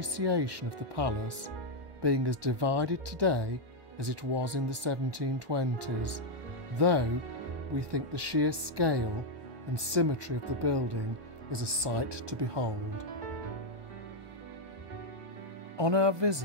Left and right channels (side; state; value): left; late; 1.2 ms